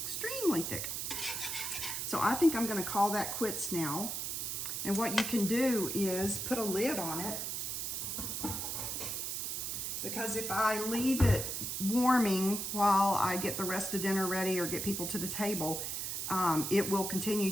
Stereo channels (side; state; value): right; noise; hiss, 3 dB below the sound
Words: extremely thick. So I think I'm gonna call that quits now. And what you can do is put a lid on it, because if I leave it warming while I get the rest of dinner ready or get people to the table, it will